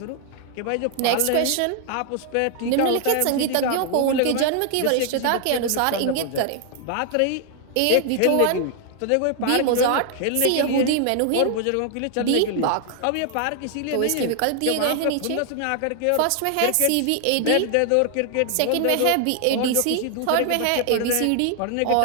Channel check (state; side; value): different; both; correlation 0.00